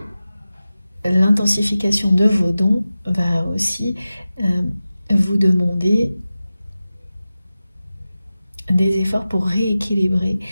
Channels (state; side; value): inverted; both; correlation -0.95